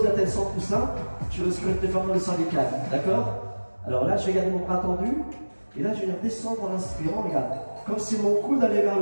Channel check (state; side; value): inverted; both; correlation -1.00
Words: la tête sans coussin, tu risques de te déformer le cervical, d'accord? Alors là, je vais garder mon bras tendu. Et là, je vais descendre en inspirant, regarde. Comme si mon coude allait vers